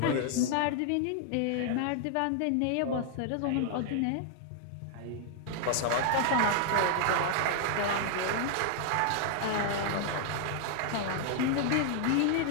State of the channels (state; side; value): different; both; correlation -0.01